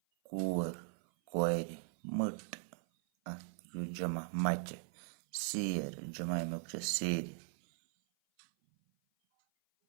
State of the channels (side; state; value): left; silent; 52 dB below the other